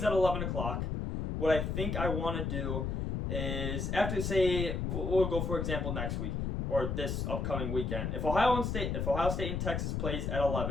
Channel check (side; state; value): left; noise; rumble, 1 dB below the sound